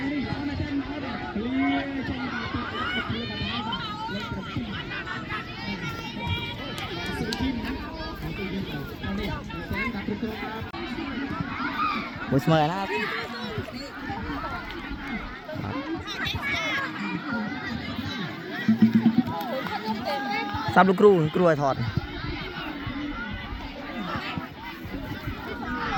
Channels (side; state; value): both; identical; correlation 1.00